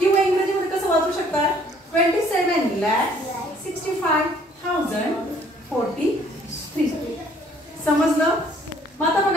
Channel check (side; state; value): both; normal; correlation 0.60